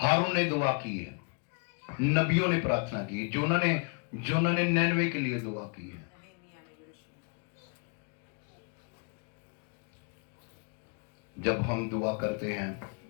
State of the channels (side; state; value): right; quieter; 37.4 dB